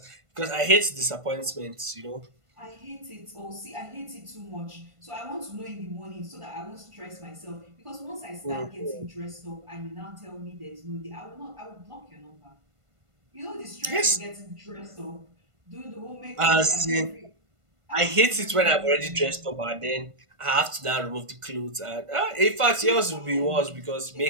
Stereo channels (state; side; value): late; left; 1.5 ms